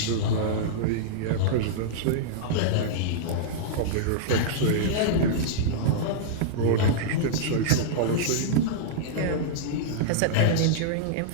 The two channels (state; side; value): different; both; correlation -0.02